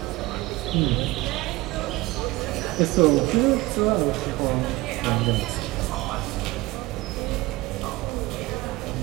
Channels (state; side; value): quieter; left; 20.5 dB